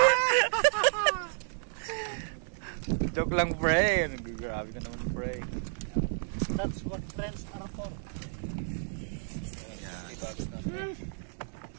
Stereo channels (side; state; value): left; silent; 57 dB below the other